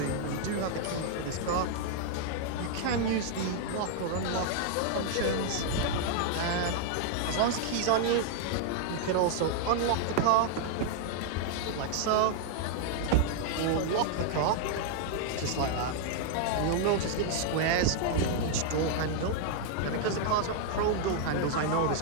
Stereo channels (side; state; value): both; different; correlation 0.00